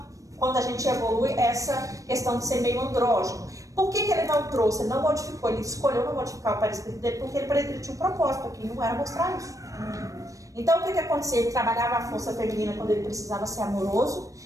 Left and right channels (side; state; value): left; late; 0.16 ms